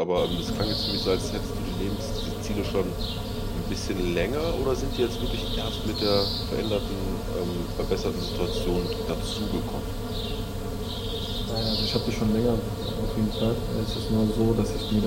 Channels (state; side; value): identical; both; correlation 1.00